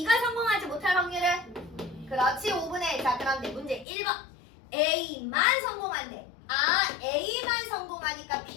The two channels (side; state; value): right; drops out; at 3.9 s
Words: 성공하지 못할 확률은? 그렇지, 5분의 1. 자, 그런데 문제 1번. A만 성공한대. A만 성공하니까